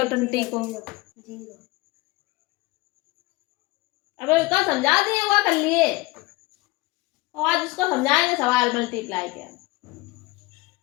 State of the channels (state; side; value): quieter; right; 21.5 dB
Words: 20 को। अबे उसका समझा दिए हुआ कर लिए, और आज उसको समझाएंगे सवाल मल्टीप्लाई के।